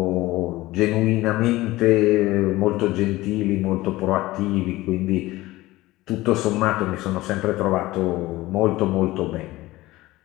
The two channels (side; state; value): right; quieter; 18.3 dB